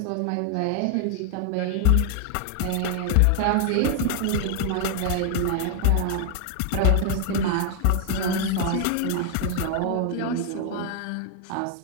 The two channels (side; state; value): both; different; correlation 0.00